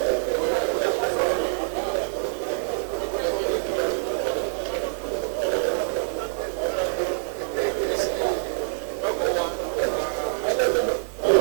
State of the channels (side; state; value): left; silent; digital silence